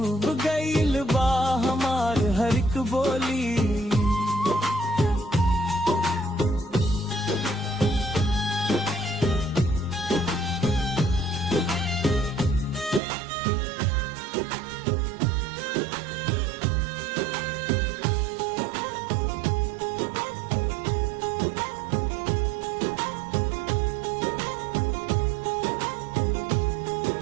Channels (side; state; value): left; drops out; at 13.0 s